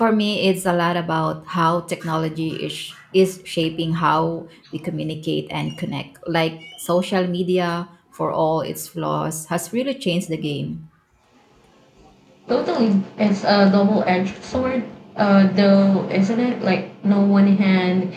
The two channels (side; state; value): both; identical; correlation 1.00